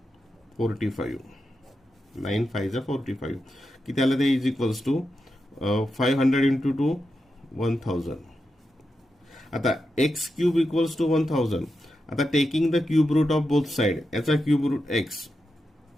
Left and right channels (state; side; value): normal; both; correlation 0.88